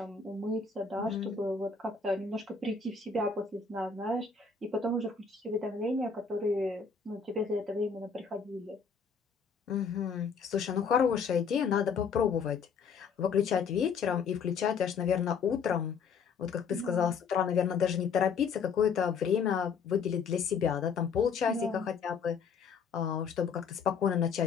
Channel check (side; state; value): right; quieter; 5.8 dB